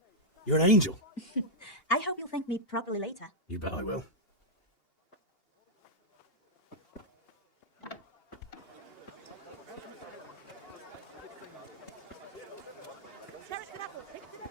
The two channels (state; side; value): late; right; 2.8 ms